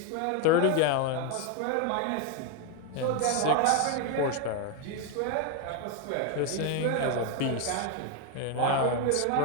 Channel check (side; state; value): both; different; correlation 0.01